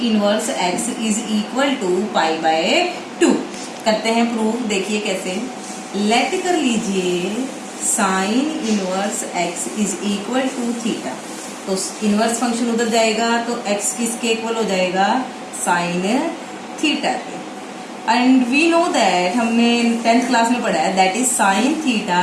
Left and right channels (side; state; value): both; identical; correlation 1.00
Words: inverse x is equal to pi by 2। करते हैं प्रूव। देखिए कैसे, लेट कर लीजिए sine inverse x is equal to theta. तो इनवर्स फंक्शन उधर जाएगा तो एक्स किसके इक्वल हो जाएगा, साइन थीटा के। एंड वी नो दैट हमने 10th क्लास में पढ़ा है that is sine theta